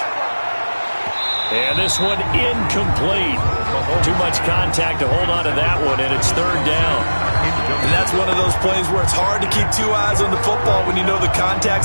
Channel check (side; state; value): both; inverted; correlation -1.00